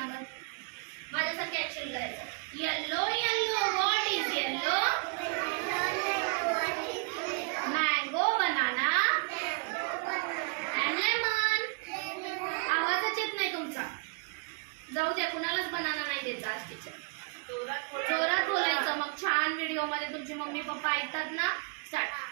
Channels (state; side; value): quieter; left; 34.6 dB